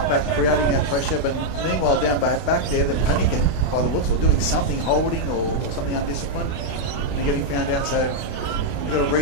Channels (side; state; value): right; late; 32 ms